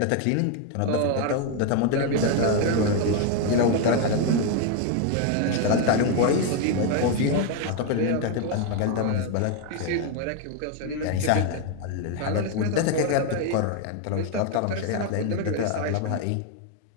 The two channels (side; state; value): both; different; correlation 0.01